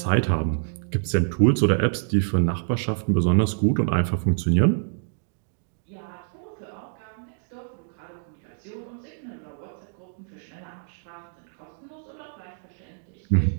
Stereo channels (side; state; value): left; silent; digital silence